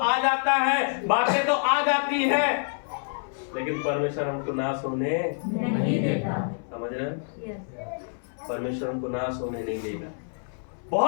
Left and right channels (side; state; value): right; silent; 60 dB below the other